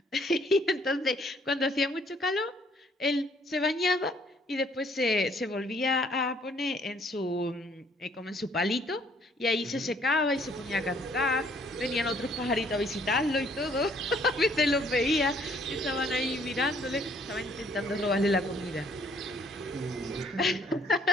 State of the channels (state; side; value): normal; both; correlation 0.63